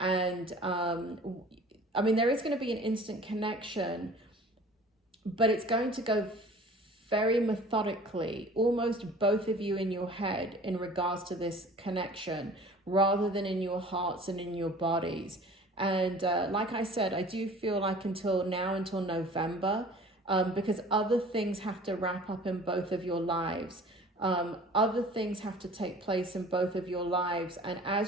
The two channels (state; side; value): normal; both; correlation 0.46